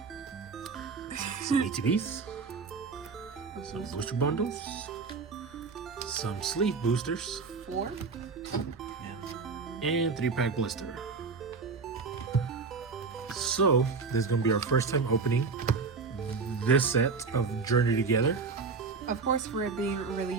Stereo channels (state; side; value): quieter; left; 4.7 dB